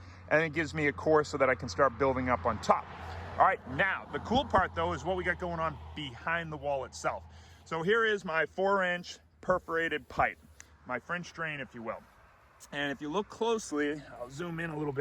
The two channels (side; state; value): both; identical; correlation 1.00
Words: and it gives me a course so that I can start building up on top. All right, now the cool part though is what we got going on behind the wall itself. So here is my 4-inch perforated pipe, my French drain, if you will. And if you look closely, I'll zoom in a little